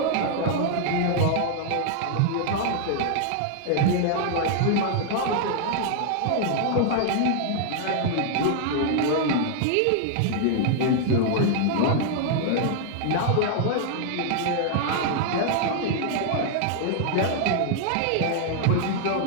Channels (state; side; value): different; both; correlation 0.00